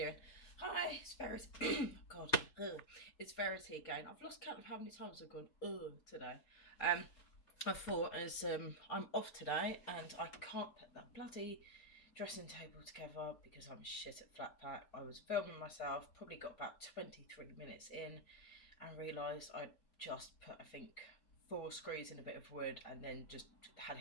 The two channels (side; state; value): right; late; 4.3 ms